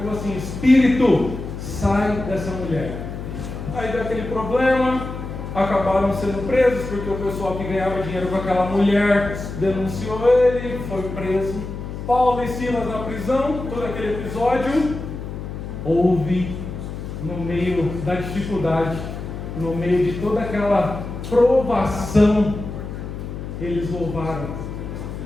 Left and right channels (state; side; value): noise; left; hum, 8 dB below the sound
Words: assim, espírito, sai dessa mulher. Aí deu aquele problema, acabaram sendo presos, porque o pessoal que ganhava dinheiro com aquela mulher denunciou ele, foi preso. Paulo e Silas na prisão, todo aquele episódio. Houve, no meio da dificuldade, no meio de toda aquela provação, eles louvaram.